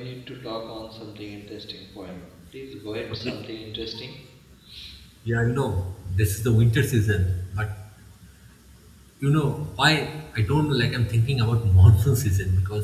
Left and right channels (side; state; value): both; identical; correlation 1.00